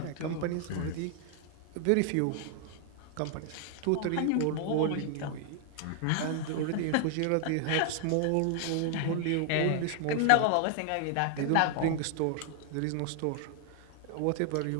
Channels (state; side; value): different; both; correlation 0.00